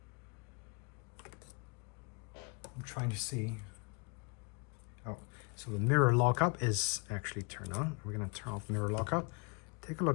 I'm trying to see. Oh, so the mirror lockup is actually turned on. We're gonna turn off mirror lockup. Take a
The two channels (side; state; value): right; quieter; 33.9 dB